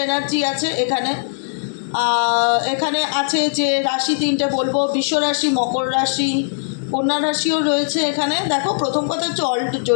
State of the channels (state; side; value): silent; right; digital silence